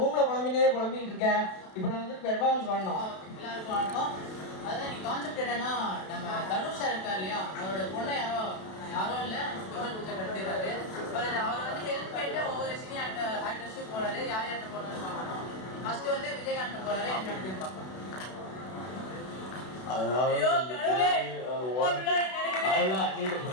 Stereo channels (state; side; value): late; right; 32 ms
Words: புலம்பிக்கிட்டு இருக்கேன். இப்போ நான் வந்து பெர்ஃபார்மன்ஸ் பண்ணோம். எல்லாருக்கும் வணக்கம். அதான் நீ கான்செப்ட் என்னன்னா, நம்ம தனுஷா இருக்கா இல்லையா, அவரோட பொண்ணை யாரோ இல்லை பெருமாள் பூஜை கட்டுறாரு. அவர் வந்து ஹெல்ப் பண்ணிட்டு ஒவ்வொரு சினி ஆக்டர்ஸும் போறாரு. யார் யார்கிட்ட போறாருன்னு பார்க்கணும். ஃபர்ஸ்ட் வந்து விஜயகாந்த் போறாரு. என்ன அப்படின்னு பார்க்கணும். ஐயோ கடவுளே,